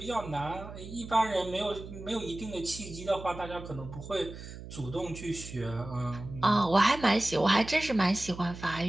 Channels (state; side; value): noise; right; hum, 13 dB below the sound